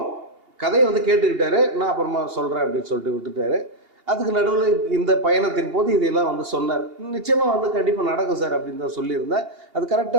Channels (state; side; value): late; left; 2.8 ms